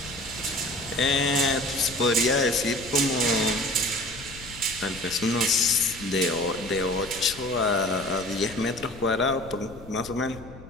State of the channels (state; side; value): noise; left; rumble, 17 dB below the sound